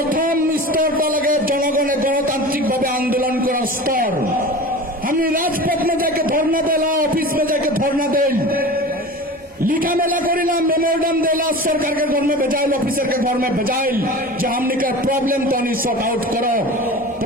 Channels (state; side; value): normal; both; correlation 0.34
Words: स्तर लगे जनगणे गणतांत्रिक भावे आंदोलन कर स्तर हमने राजपथ में जाके धरना देला ऑफिस में जाके धरना देल लिखा मेला करिला मेमोरेंडम देला सरकार के घर में भेजाइल ऑफिसर के घर में भेजाइल जो हमने का प्रॉब्लम तो नहीं सॉर्ट आउट करो